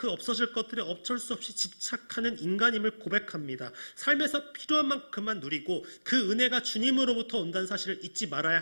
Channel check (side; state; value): both; inverted; correlation -1.00